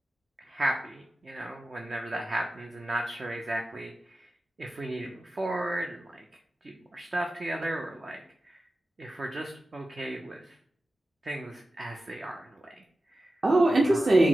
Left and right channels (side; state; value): both; normal; correlation 0.94